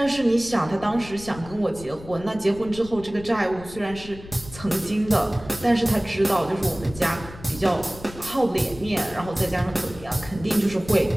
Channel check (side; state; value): left; noise; rumble, 16 dB below the sound